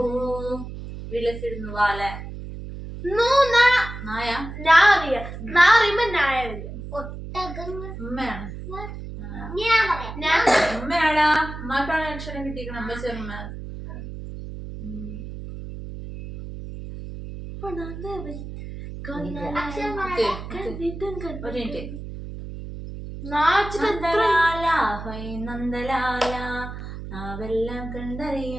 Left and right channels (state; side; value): noise; right; hum, 10 dB below the sound